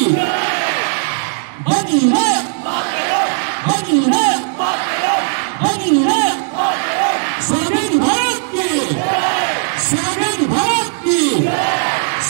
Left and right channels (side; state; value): left; silent; digital silence